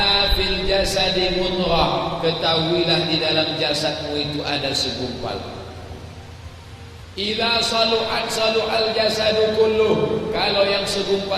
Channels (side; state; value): both; identical; correlation 1.00